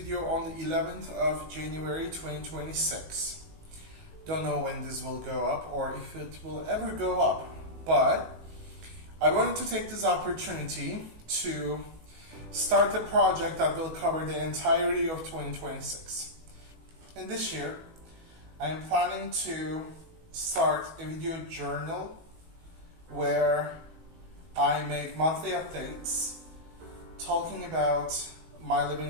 on the 11th of January 2026. Don't know when this will go up or if it will ever go up, but I wanted to take this opportunity to start a project that will cover the entirety of 2026. And this year, I'm planning to start a video journal where I make monthly updates talking about my living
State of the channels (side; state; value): left; late; 19 ms